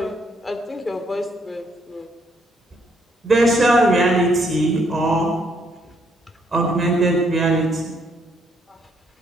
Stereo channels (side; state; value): both; normal; correlation 0.71